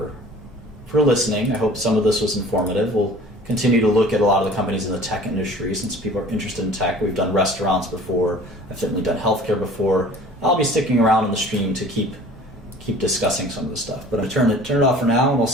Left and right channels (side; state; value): both; normal; correlation 0.47